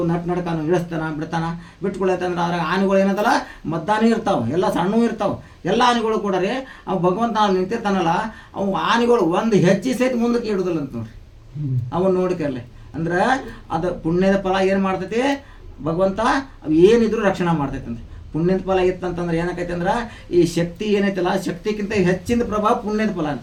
ನಡ್ಕ ಅವ್ನು ಇಳಿಸ್ತಾನ ಬಿಡ್ತಾನ. ಬಿಟ್ಕೊಳತ್ತಂದ್ರೆ ಅದ್ರಾಗ ಆನೆಗಳು ಏನದಲ್ಲ ಮದ್ದಾನೂ ಇರ್ತಾವೆ, ಎಲ್ಲ ಸಣ್ಣವು ಇರ್ತಾವೆ. ಎಲ್ಲ ಆನೆಗಳು ಕೂಡ ರೀ ಅವು ಭಗವಂತ ನಿಂತಿರ್ತಾನಲ್ಲ, ಅವು ಆನೆಗಳು ಒಂದು ಹೆಜ್ಜೆ ಸಹಿತ ಮುಂದಕ್ಕೆ ಇಡುದಿಲ್ಲ ಅಂತ ನೋಡ್ರಿ. ಅವನು ನೋಡಿಕರ್ಲೆ ಅಂದ್ರೆ ಅದು ಪುಣ್ಯದ ಫಲ ಏನು ಮಾಡ್ತೈತಿ ಭಗವಂತ ಅವು ಏನಿದ್ರು ರಕ್ಷಣೆ ಮಾಡ್ತೈತಿ ಅಂತ. ಪುಣ್ಯದ ಫಲ ಇತ್ತಂತಂದ್ರೆ ಏನಾಕೈತಿ ಅಂದ್ರೆ ಈ ಶಕ್ತಿ ಏನೈತಲ್ಲ, ಶಕ್ತಿಗಿಂತ ಹೆಚ್ಚಿನ ಪ್ರಭಾವ ಪುಣ್ಯದ ಫಲ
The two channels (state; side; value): identical; both; correlation 1.00